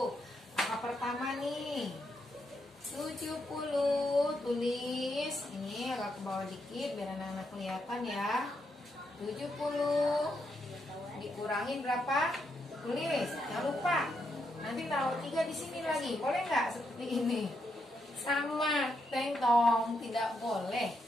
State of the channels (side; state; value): both; normal; correlation 0.80